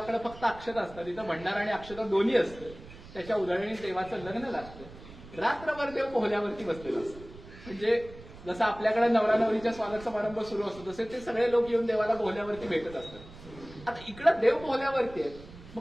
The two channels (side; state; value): right; noise; rumble, 17 dB below the sound